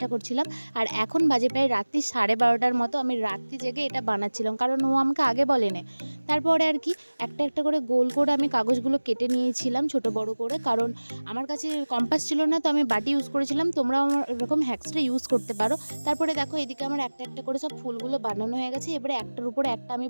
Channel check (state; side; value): inverted; both; correlation -1.00